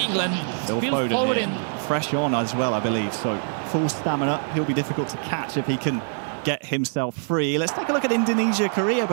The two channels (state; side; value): silent; left; 61 dB below the other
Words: Phil Foden fresh on as well, I believe. So full stamina. He'll be difficult to catch if he can get himself free. Let's take a look at Indonesia, Korea,